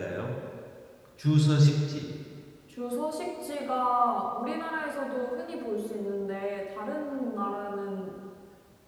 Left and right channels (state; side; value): identical; both; correlation 1.00